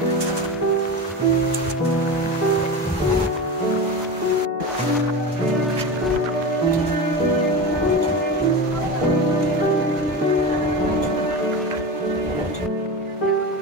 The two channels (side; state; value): both; normal; correlation 0.25